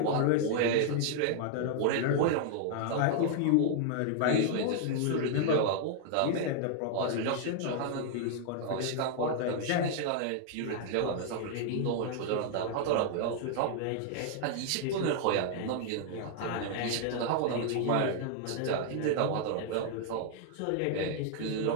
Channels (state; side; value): different; both; correlation 0.00